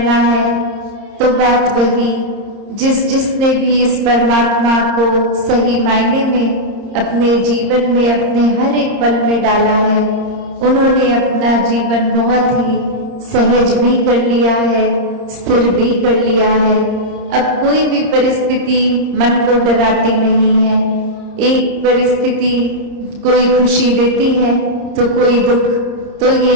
है। तो बात वही, जिसने भी इस परमात्मा को सही मायने में अपने जीवन में, अपने हर एक पल में डाला है, उन्होंने अपना जीवन बहुत ही सहज भी कर लिया है, स्थिर भी कर लिया है। अब कोई भी परिस्थिति मन को डराती नहीं है। एक परिस्थिति कोई खुशी देती है तो कोई दुख, तो ये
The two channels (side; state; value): left; late; 30 ms